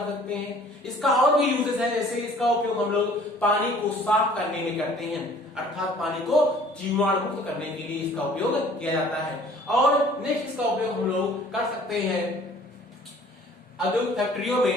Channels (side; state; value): both; normal; correlation 0.53